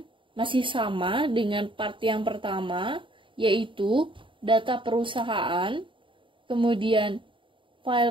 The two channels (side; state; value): left; late; 0.24 ms